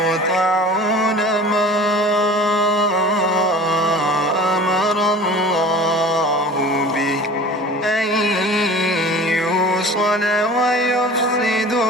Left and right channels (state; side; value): normal; both; correlation 0.40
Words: ما أمر الله به أن يوصل